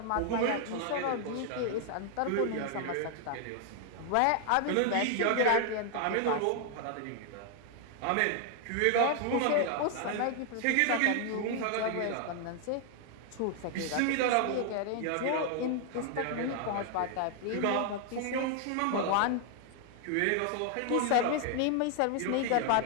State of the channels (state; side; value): different; both; correlation 0.00